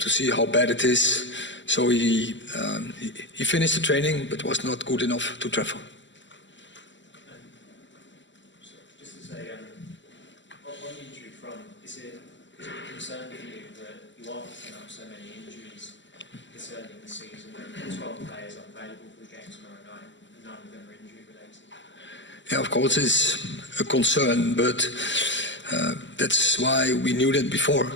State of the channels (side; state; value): right; late; 0.54 ms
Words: see how bad it is. So he finished the training, but was not good enough to travel. Just to say, on the injury front, is it a concern for you that you are picking up so many injuries this early in the season, and 12 players unavailable for the game tomorrow night, and none of them are injury related? Yeah, of course it's a concern, but that's why we knew that before,